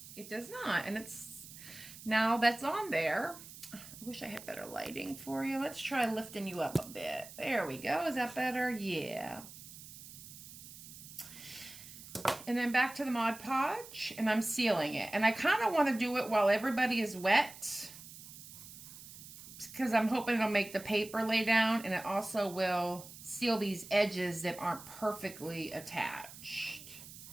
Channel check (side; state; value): right; noise; hiss, 15 dB below the sound